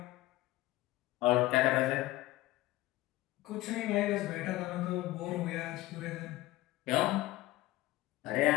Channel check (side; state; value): right; quieter; 17.8 dB